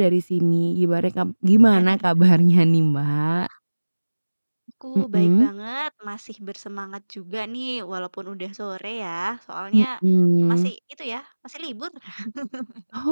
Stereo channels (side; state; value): both; inverted; correlation -1.00